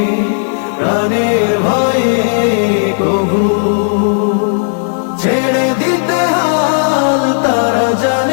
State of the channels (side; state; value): right; silent; digital silence